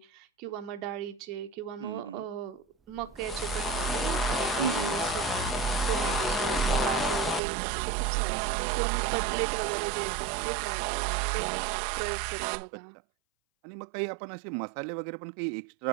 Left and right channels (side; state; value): left; drops out; at 7.4 s